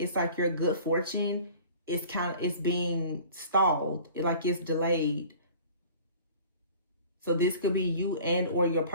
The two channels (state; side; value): inverted; both; correlation -0.45